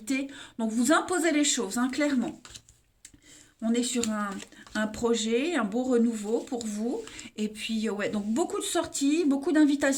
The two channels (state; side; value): identical; both; correlation 1.00